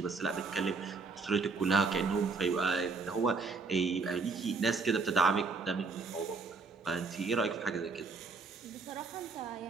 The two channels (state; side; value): quieter; left; 4.5 dB